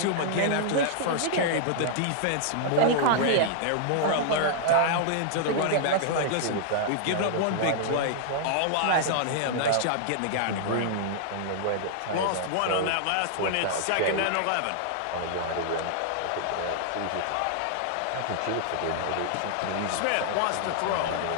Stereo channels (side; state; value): both; different; correlation -0.01